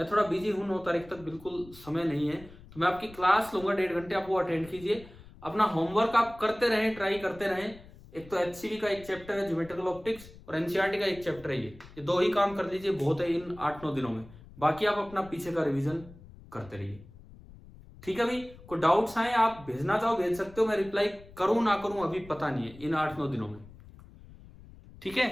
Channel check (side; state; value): left; noise; rumble, 20 dB below the sound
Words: थोड़ा बिजी हूं, 9 तारीख तक बिल्कुल समय नहीं है, तो मैं आपकी क्लास लूंगा 1.5 घंटे, आप वो अटेंड कीजिए। अपना होमवर्क आप करते रहें, ट्राई करते रहें। एक तो HCV का एक चैप्टर है ज्योमेट्रिकल ऑप्टिक्स, और NCERT का एक चैप्टर है, ये 2 ही काम कर लीजिए, बहुत है इन 8-9 दिनों में। बाकी आप अपना पीछे का रिवीजन करते रहिए, ठीक है भाई। कोई डाउट्स आए आप भेजना चाहो भेज सकते हो, मैं रिप्लाई करूं ना करूं अभी पता नहीं है इन 8-9 दिनों में, ठीक है।